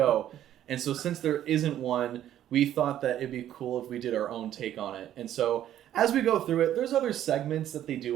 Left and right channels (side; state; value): left; quieter; 11.6 dB